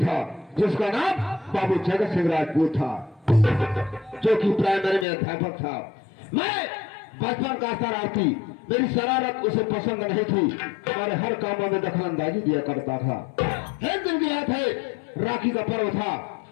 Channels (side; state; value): right; drops out; at 5.1 s